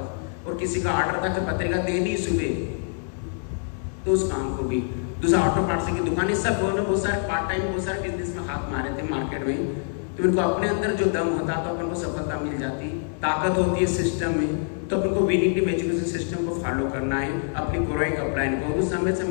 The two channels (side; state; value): right; silent; 62 dB below the other